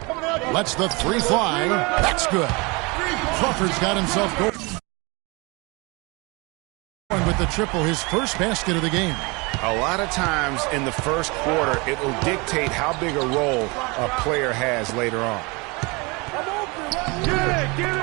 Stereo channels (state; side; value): quieter; left; 27.3 dB